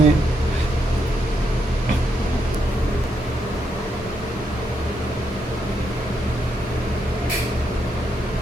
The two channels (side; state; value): both; normal; correlation 0.79